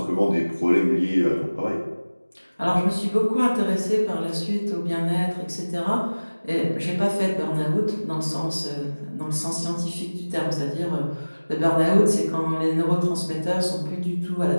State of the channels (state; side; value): inverted; both; correlation -1.00